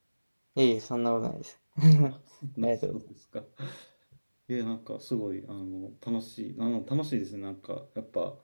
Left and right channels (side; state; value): both; inverted; correlation -1.00